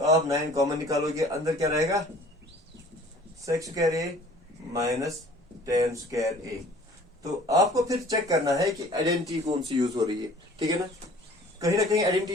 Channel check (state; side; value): normal; both; correlation 0.50